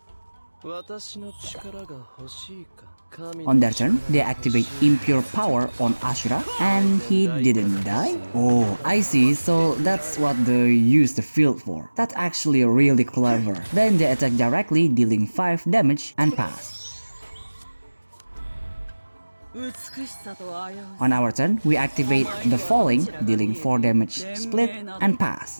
On their turn, they activate Impure Power on Ashura, and he didn't die? Oh, I see, so that's what they use the field for. That's actually really clever. Then they attack directly, dealing 5 damage and pass. On our turn, we activate the Falling, dealing 4 damage, split, and pass.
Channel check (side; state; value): both; inverted; correlation -1.00